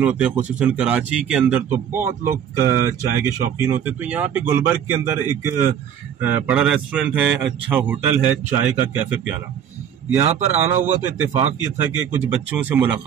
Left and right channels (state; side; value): quieter; left; 8.8 dB